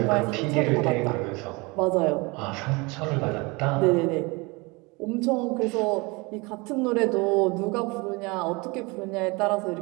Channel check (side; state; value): left; quieter; 26.3 dB